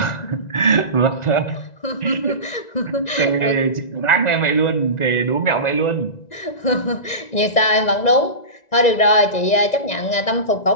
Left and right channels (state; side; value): late; right; 1.9 ms